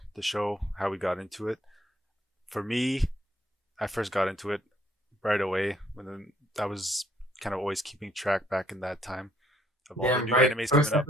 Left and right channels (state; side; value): normal; both; correlation 0.66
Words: the show, how we got into it. For me, I first got into it right away I was kind of always keeping track back in that time of all the Damn new right. animes First coming